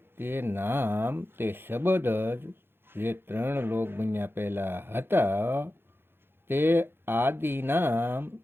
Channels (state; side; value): late; left; 0.11 ms